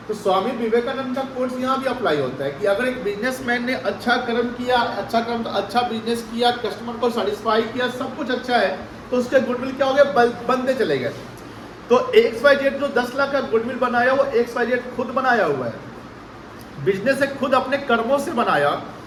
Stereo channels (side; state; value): both; identical; correlation 1.00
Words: तो स्वामी विवेकानंद का कोर्स यहाँ भी अप्लाई होता है कि अगर एक बिजनेसमैन ने अच्छा कर्म किया, अच्छा कर्म तो अच्छा बिजनेस किया, कस्टमर को सेटिस्फाई किया, सब कुछ अच्छा है, तो उसके गुडविल क्या हो गए, बनते चले गए। तो XYZ जो 10 लाख का गुडविल बनाया वो XYZ खुद बनाया हुआ है, बिजनेस से खुद अपने कर्मों से बनाया।